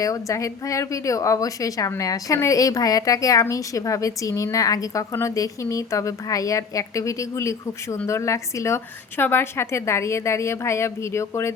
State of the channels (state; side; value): quieter; right; 5.6 dB